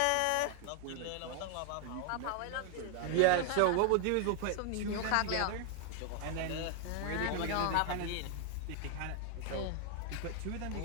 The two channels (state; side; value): different; both; correlation 0.00